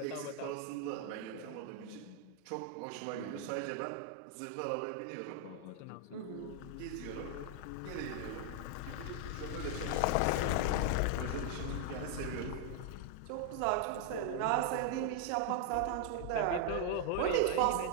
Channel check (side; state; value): both; different; correlation 0.00